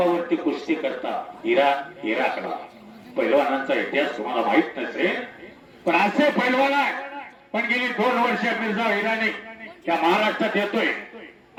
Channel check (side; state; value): both; identical; correlation 1.00